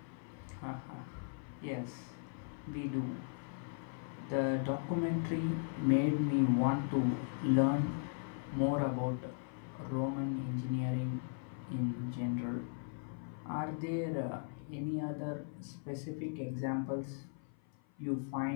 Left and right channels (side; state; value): right; silent; 53 dB below the other